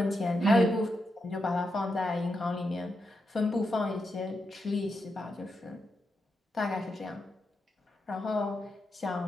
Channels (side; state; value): both; normal; correlation 0.85